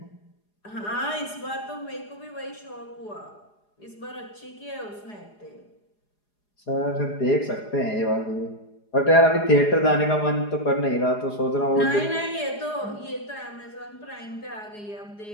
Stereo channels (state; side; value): late; right; 4.8 ms